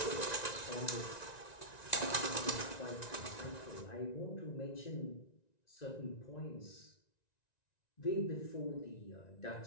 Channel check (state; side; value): late; right; 1.9 ms